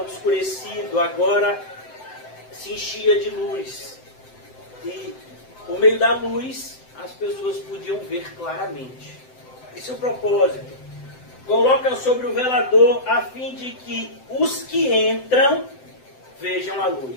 obscurecido, agora se enchia de luz. E por meio da luz, as pessoas podiam ver claramente. Esse é o propósito. Coloca sobre o velador a fim de que os que entram vejam a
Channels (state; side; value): late; right; 7.8 ms